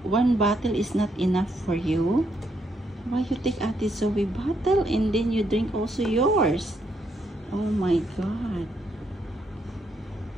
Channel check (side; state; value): both; normal; correlation 0.76